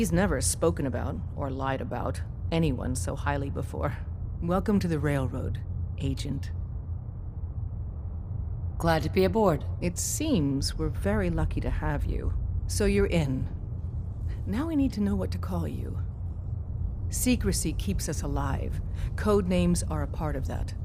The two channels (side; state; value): both; identical; correlation 1.00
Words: never spoken about, or lied about, anyone so highly before. Welcome to the Railroad, Agent. Glad to be aboard. It seems we're very lucky to have you. So you're in. Now we need to know what to call you. Secrecy keeps us alive. Code names are a part of that.